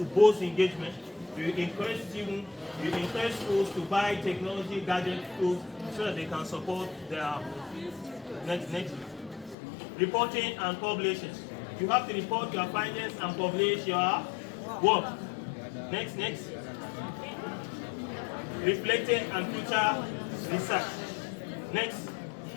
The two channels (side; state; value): right; drops out; at 9.6 s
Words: boost engagement. You encourage students, you encourage schools to buy technology gadget tools so that they can support their next. Reporting and publishing. You have to report your findings and publish your work. Next. Reflecting and future research. Next.